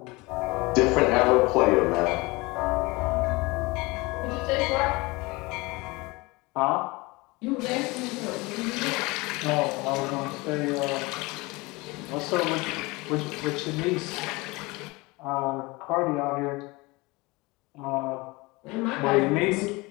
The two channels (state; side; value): quieter; right; 23.9 dB